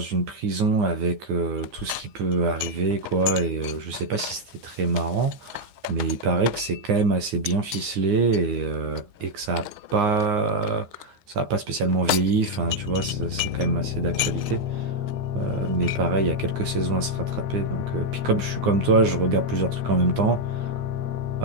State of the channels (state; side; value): late; left; 9.7 ms